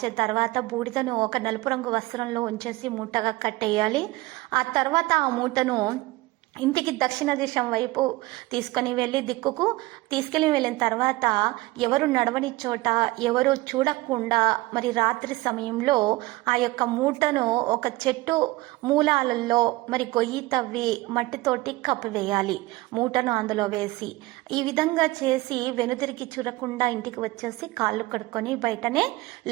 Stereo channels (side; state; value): left; quieter; 20.1 dB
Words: తర్వాత బూడిదను ఒక నలుపు రంగు వస్త్రంలో ఉంచేసి మూటగా కట్టేయాలి. ఆ తర్వాత ఆ మూటను ఇంటికి దక్షిణ దిశం వైపు తీసుకొని తీసుకెళ్ళి వెళ్ళిన తర్వాత ఎవరు నడవని చోట, ఎవరు చూడకుండా మరి రాత్రి సమయంలో ఆ యొక్క మూటను ఒక చెట్టు మూలాలలో మరి గొయ్యి తవ్వి మట్టితోటి కప్పివేయాలి. మూటను అందులో వేసి ఈ విధంగా చేసి వెనుదిరిగి చూడకుండా ఇంటికి వచ్చేసి కాళ్ళు కడుక్కొని బయటనే